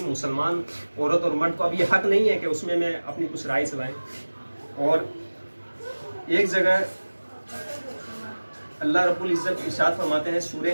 مسلمان عورت اور مرد کو اب یہ حق نہیں ہے کہ اس میں اپنی کچھ رائے چلائیں۔ اور ایک جگہ اللہ رب العزت ارشاد فرماتے ہیں سورہ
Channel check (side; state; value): both; inverted; correlation -1.00